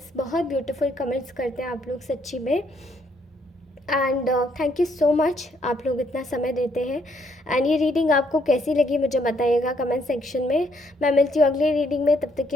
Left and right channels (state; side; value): normal; both; correlation 0.70